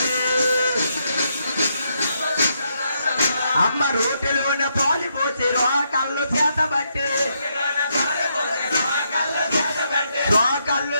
అమ్మ రోటిలోన పాలు పోసి రోకళ్ళు చేతబట్టి రోకళ్ళు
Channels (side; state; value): both; inverted; correlation -0.78